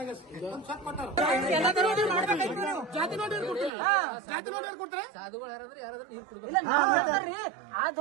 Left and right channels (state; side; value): drops out; left; at 3.7 s